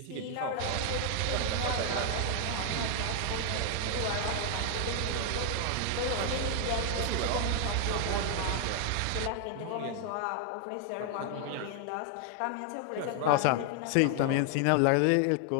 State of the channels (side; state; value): both; different; correlation 0.00